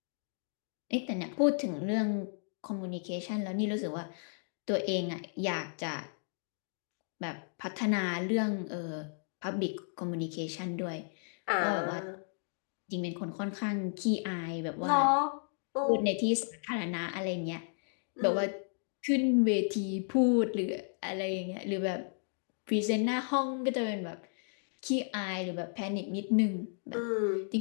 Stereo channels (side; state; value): right; silent; digital silence